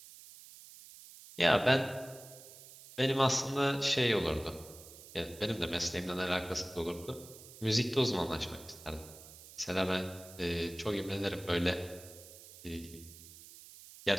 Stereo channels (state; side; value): noise; right; hiss, 18 dB below the sound